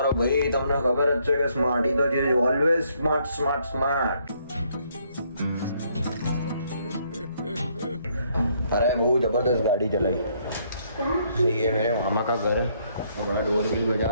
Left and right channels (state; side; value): inverted; both; correlation -0.69